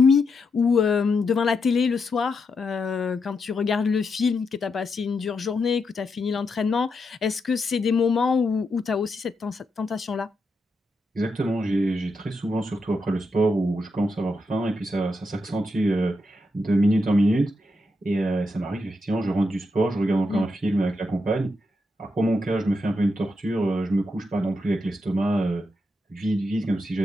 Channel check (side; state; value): both; normal; correlation 0.84